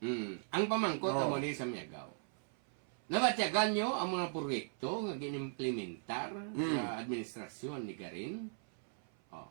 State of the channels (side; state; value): left; silent; 53 dB below the other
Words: Ang pamangkot Oh. amo ni sa Miagaw. Nabatyagan nyo ang mga proyekto nga ginimplementar sa administrasyon ni Garin. Oh.